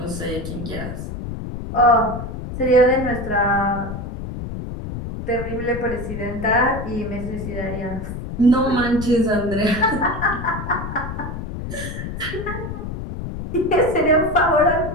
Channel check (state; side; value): noise; left; rumble, 7 dB below the sound